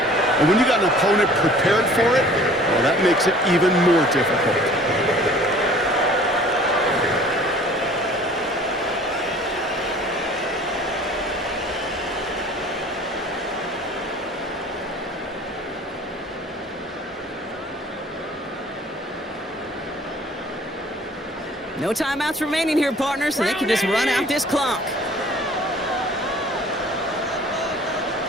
And when you got an opponent prepared for it, well, that makes it even more difficult. No timeouts remaining here, partners, so they can just run out this clock.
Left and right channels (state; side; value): normal; both; correlation 0.50